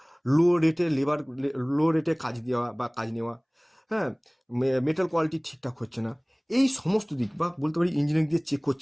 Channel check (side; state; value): both; identical; correlation 1.00